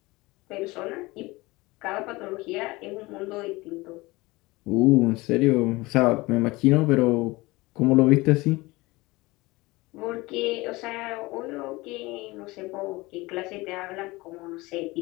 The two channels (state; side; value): quieter; right; 21.8 dB